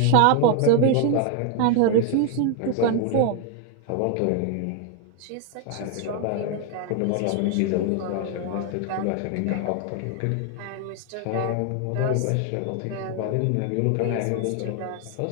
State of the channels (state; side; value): different; both; correlation 0.01